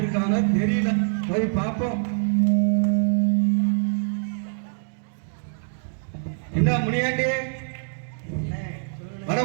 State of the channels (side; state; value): left; silent; 62 dB below the other